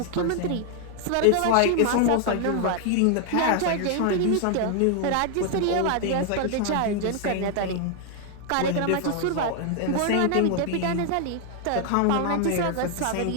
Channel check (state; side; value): different; both; correlation 0.00